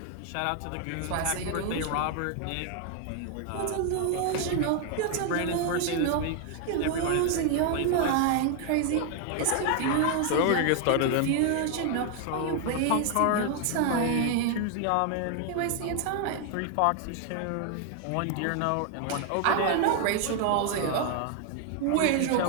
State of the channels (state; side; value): different; both; correlation 0.00